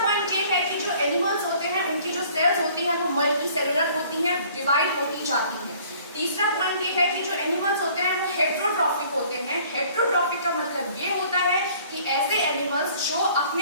ये है कि जो एनिमल्स होते हैं उनकी जो सेल्स होती है वो मल्टी सेलुलर होती हैं, डिवाइड होती जाती हैं। तीसरा पॉइंट ये है कि जो एनिमल्स होते हैं वो हेट्रोट्रॉफिक होते हैं। हेट्रोट्रॉफिक का मतलब ये होता है कि ऐसे एनिमल्स जो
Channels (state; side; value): inverted; both; correlation -0.54